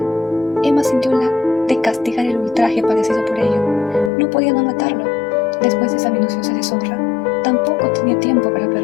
Emma sintió la de castigar el ultraje padecido por ello. No podía no matarlo. Después de esa minuciosa deshonra, tampoco tenía tiempo para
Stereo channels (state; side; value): drops out; right; at 4.1 s